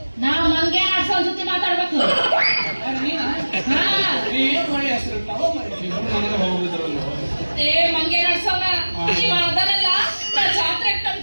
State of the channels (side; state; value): both; inverted; correlation -1.00